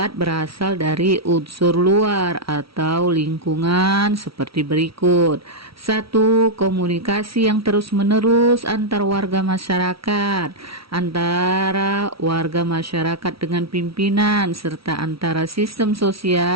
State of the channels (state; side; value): late; left; 0.75 ms